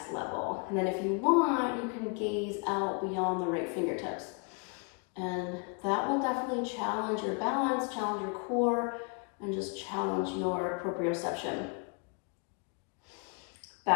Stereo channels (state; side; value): quieter; right; 35.5 dB